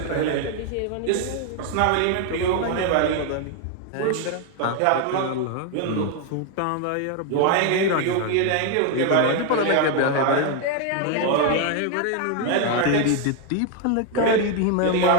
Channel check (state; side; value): different; both; correlation 0.01